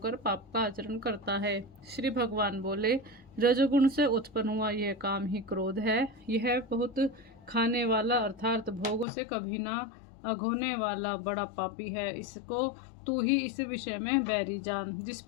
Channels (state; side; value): drops out; right; at 9.1 s